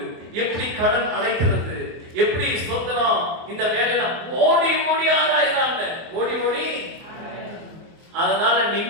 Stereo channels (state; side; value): late; left; 24 ms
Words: எப்படி கடன் அடைக்கிறது, எப்படி ஸ்தோத்திரம் இந்த வேலையில ஓடி ஓடி ஆராய்றாங்க. ஓடி